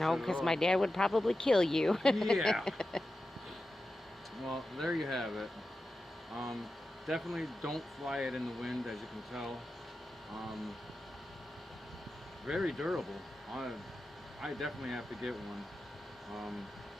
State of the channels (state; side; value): normal; both; correlation 0.92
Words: because my dad would probably kill you. Yeah. Well, there you have it. Definitely don't fly it in the wind, as you can tell. Very durable. I definitely have to get one.